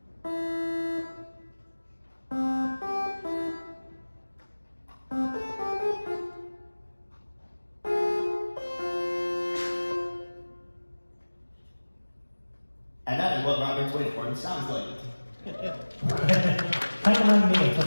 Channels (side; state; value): both; inverted; correlation -1.00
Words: And that is what Robert's waveform sounds like. Kind of reminded me of